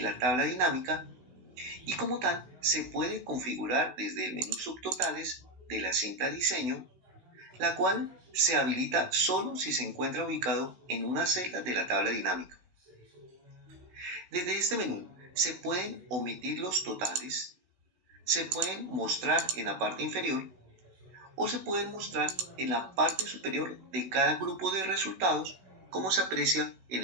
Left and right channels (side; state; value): left; late; 16 ms